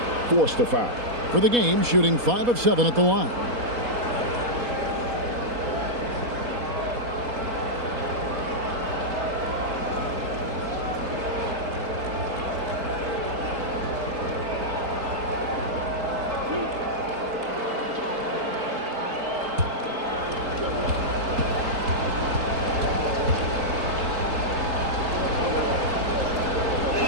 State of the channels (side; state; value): left; late; 4.1 ms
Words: forced to foul. For the game, shooting 5 of 7 at the line.